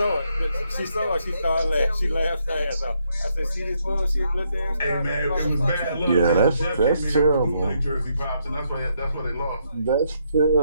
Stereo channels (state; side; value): inverted; both; correlation -0.75